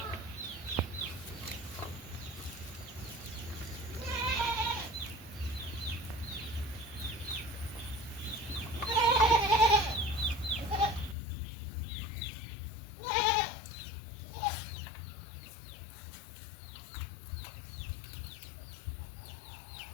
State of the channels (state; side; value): drops out; right; at 11.2 s